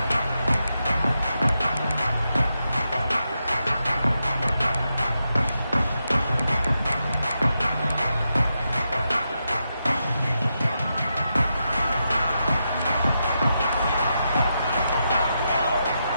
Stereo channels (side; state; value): both; inverted; correlation -0.85